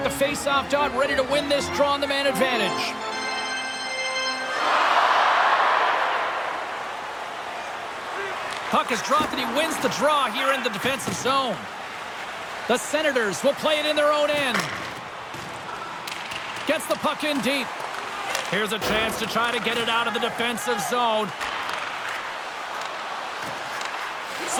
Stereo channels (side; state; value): both; identical; correlation 1.00